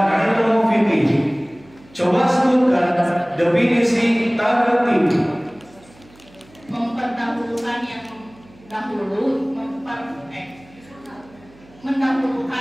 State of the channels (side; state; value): right; noise; hum, 26 dB below the sound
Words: fiqih. Coba sebutkan definisi tartib. Memperdahulukan yang dahulu,